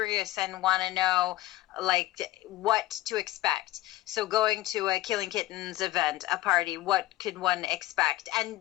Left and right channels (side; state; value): right; quieter; 16.9 dB